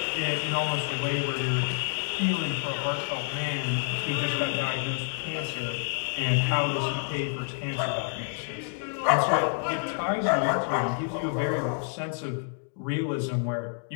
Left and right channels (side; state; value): right; silent; 58 dB below the other